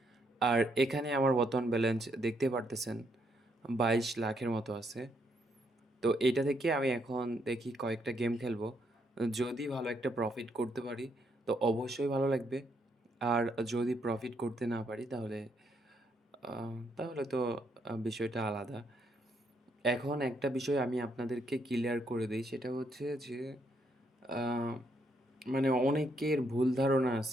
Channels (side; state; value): both; normal; correlation 0.75